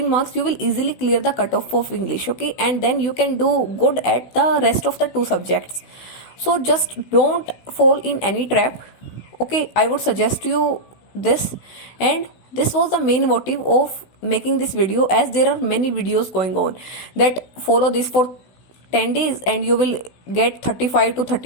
marks you will easily clear the cutoff of English. Okay, and then you can do good at the rest of the 2 subjects. So just don't fall in any trap. Okay, I would suggest you this, and this was the main motive of making this video, as there are many videos going on that follow this for 10 days and you will get 35 to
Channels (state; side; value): late; right; 16 ms